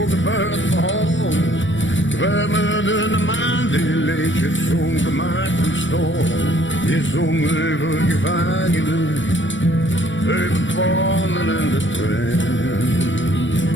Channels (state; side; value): late; right; 0.55 ms